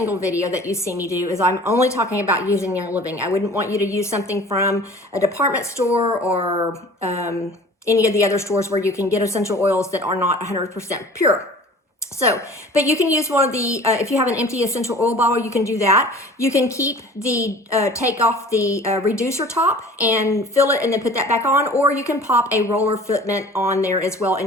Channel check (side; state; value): both; normal; correlation 0.45